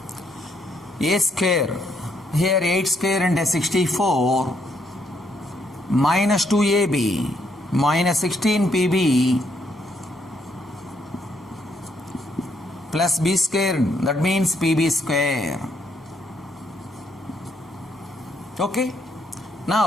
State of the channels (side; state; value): both; normal; correlation 0.73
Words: A square, here 8 square and 64 minus 2AB minus 16 PB plus B square, that means PB square. Okay.